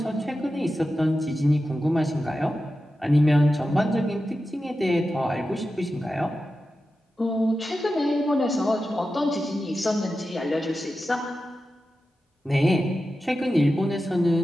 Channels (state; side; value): normal; both; correlation 0.92